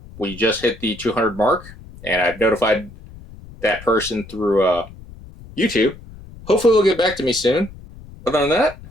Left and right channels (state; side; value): noise; left; rumble, 18 dB below the sound